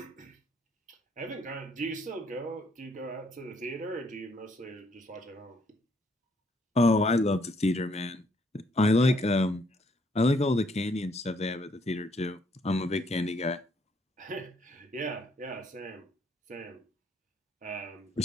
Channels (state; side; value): normal; both; correlation 0.68